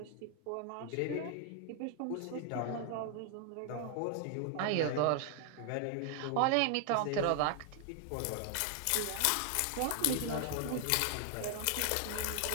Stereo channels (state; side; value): different; both; correlation 0.00